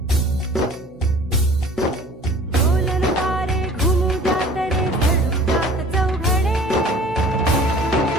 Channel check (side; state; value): both; normal; correlation 0.47